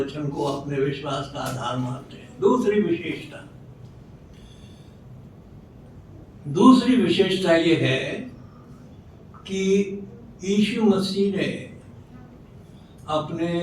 को अपने विश्वास का आधार मानते हैं। दूसरी विशेषता ये है कि यीशु मसीह ने अपने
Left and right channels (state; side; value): identical; both; correlation 1.00